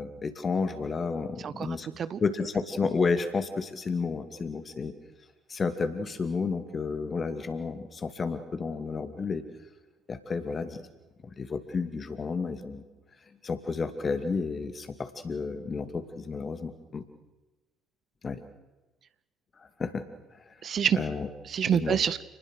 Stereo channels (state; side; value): normal; both; correlation 0.80